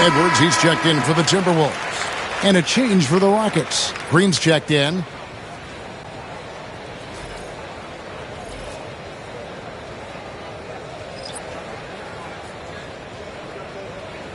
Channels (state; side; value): identical; both; correlation 1.00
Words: Edwards, he's checked in for the Timberwolves. And a change for the Rockets. Green's checked in.